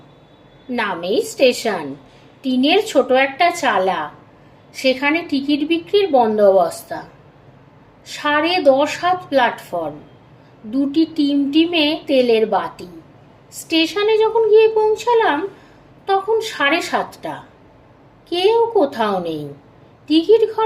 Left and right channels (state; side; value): identical; both; correlation 1.00